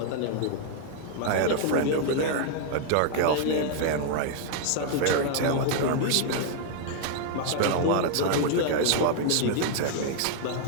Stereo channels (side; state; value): both; different; correlation 0.00